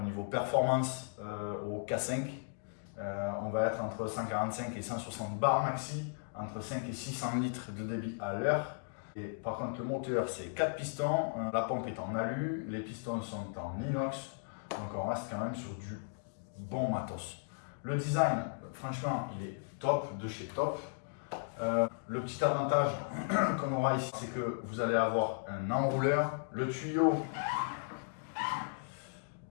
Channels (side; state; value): right; silent; digital silence